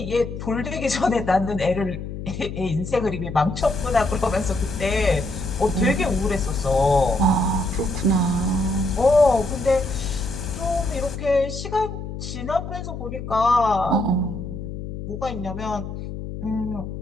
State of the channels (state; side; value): noise; left; hum, 8 dB below the sound